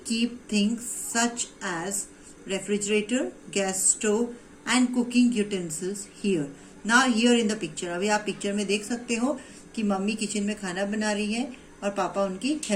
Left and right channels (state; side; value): identical; both; correlation 1.00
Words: keep things such as refrigerator, gas stove and cooking utensils here. Now here in the picture, अभी आप पिक्चर में देख सकते हो कि मम्मी किचन में खाना बना रही है और पापा उनकी